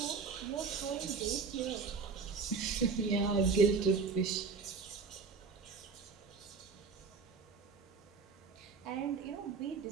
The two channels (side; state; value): left; quieter; 5.0 dB